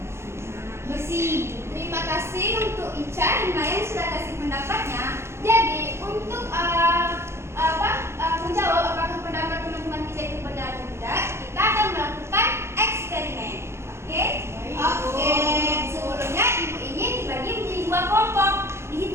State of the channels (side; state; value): left; late; 0.13 ms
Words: besi. Terima kasih untuk Ica dan Maya yang sudah kasih pendapatnya. Jadi untuk menjawab apakah pendapat teman-teman kita itu benar atau tidak, kita akan melakukan eksperimen. Oke? Oke. Sebelumnya ibu ini dibagi menjadi 2 kelompok.